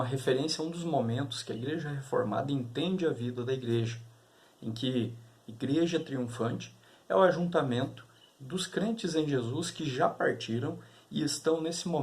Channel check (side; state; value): both; identical; correlation 1.00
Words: referência a um dos momentos que a Igreja Reformada entende a vida da Igreja, em que Igreja Triunfante é o ajuntamento dos crentes em Jesus que já partiram e estão nesse